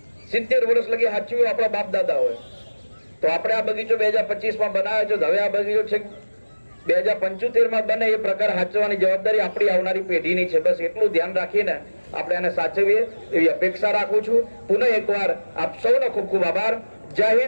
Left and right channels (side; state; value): both; inverted; correlation -1.00